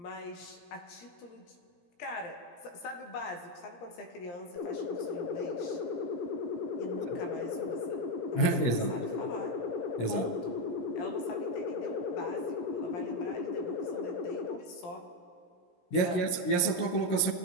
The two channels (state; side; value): late; right; 17 ms